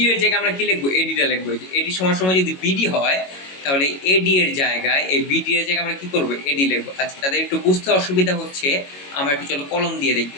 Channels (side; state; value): right; late; 22 ms